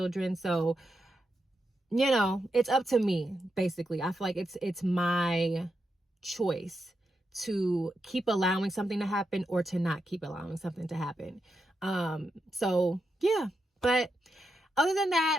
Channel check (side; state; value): both; normal; correlation 0.86